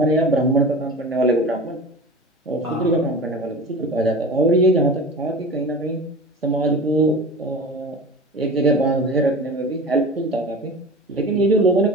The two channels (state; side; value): normal; both; correlation 0.34